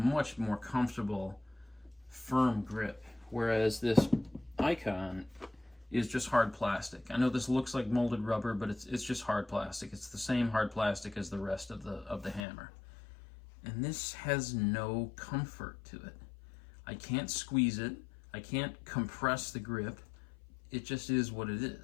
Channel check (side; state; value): right; drops out; at 12.5 s